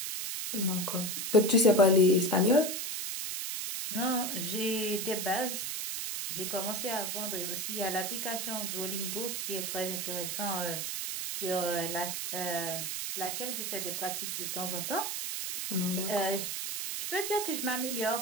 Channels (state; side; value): noise; right; hiss, 3 dB below the sound